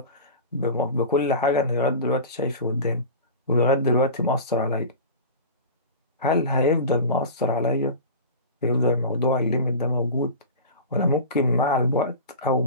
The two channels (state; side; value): inverted; both; correlation -0.32